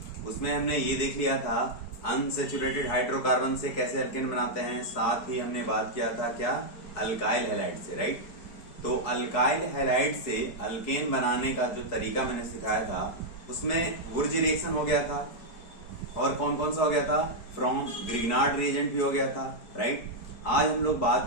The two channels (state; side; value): late; right; 4.7 ms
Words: उसमें हमने ये देख लिया था अनसेचुरेटेड हाइड्रोकार्बन से कैसे अल्केन बनाते हैं, साथ ही हमने बात किया था क्या अल्काइल हैलाइड से, राइट। तो अल्काइल हैलाइड से अल्केन बनाने का जो तरीका मैंने सिखाया था उसमें वुर्ज रिएक्शन हो गया था और कौन कौन सा हो गया था, फ्रॉम ग्रिग्नार्ड रिएजेंट भी हो गया था, राइट। आज हम लोग बात